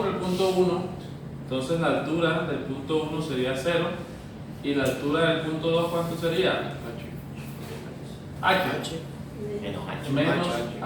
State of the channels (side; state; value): both; identical; correlation 1.00